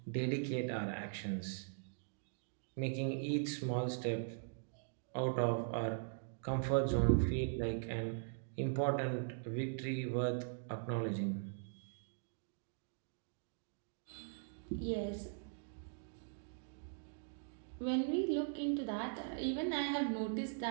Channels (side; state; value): left; silent; digital silence